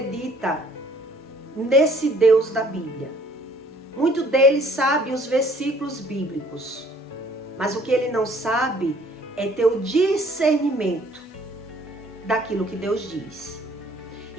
nesse Deus da Bíblia. Muito deles sabe os versículos bíblicos, mas o que ele não sabe é ter o discernimento daquilo que Deus diz.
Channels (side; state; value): both; normal; correlation 0.58